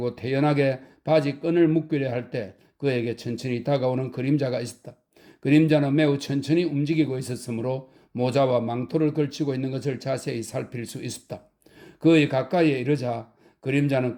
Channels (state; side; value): identical; both; correlation 1.00